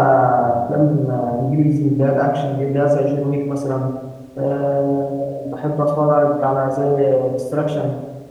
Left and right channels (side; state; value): both; identical; correlation 1.00